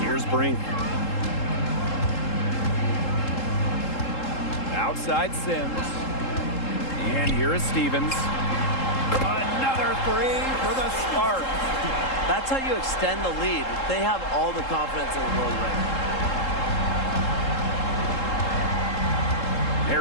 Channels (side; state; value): right; late; 3.7 ms